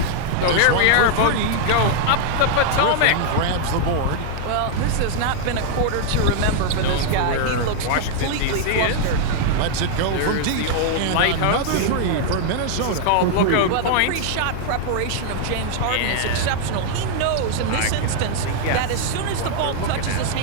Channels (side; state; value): both; different; correlation 0.00